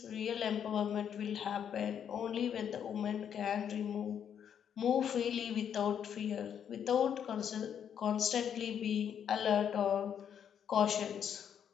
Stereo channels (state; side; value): quieter; right; 8.6 dB